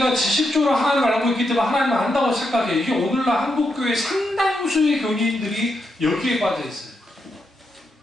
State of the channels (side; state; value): both; normal; correlation 0.83